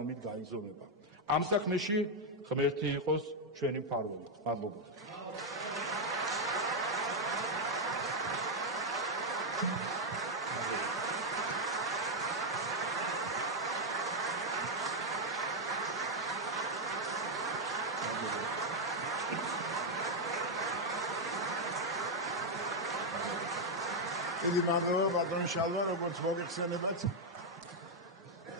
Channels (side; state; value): both; normal; correlation 0.01